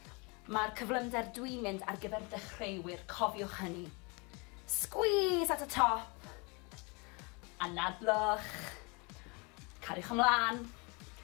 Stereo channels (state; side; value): quieter; right; 30.0 dB